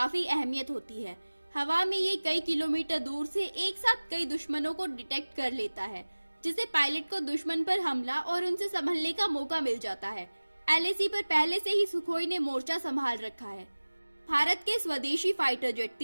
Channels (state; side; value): inverted; both; correlation -1.00